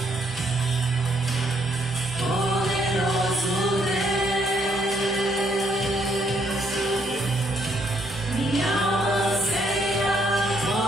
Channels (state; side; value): normal; both; correlation 0.71